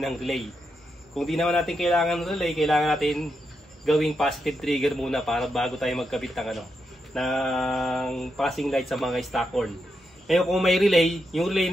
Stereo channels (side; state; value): both; normal; correlation 0.84